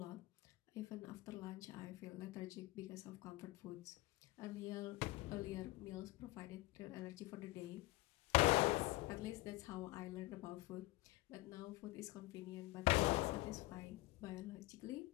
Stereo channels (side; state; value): right; quieter; 19.9 dB